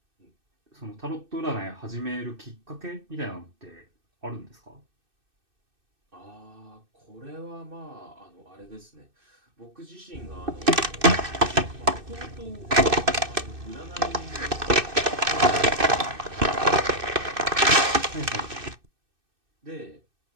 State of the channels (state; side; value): late; left; 2.6 ms